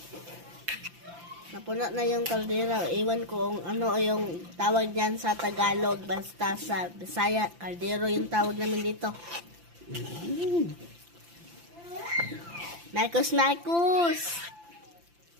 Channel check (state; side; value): late; left; 5.8 ms